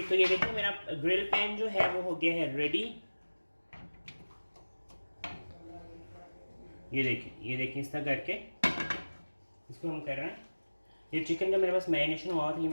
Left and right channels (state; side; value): inverted; both; correlation -1.00